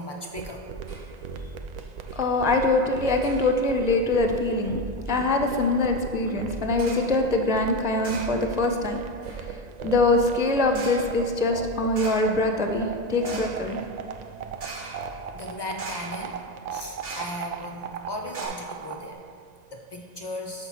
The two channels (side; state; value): left; late; 1.9 ms